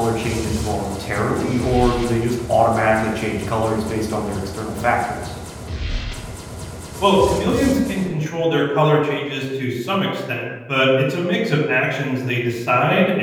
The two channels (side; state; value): both; identical; correlation 1.00